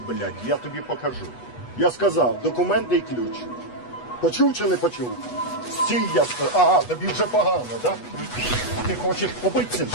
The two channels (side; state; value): right; late; 8.2 ms